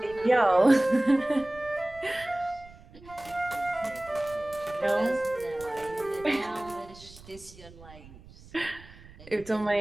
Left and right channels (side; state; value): right; noise; rumble, 20 dB below the sound